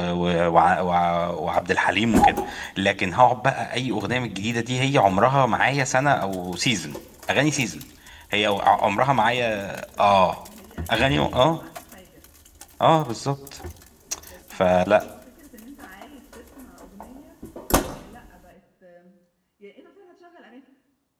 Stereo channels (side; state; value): both; identical; correlation 1.00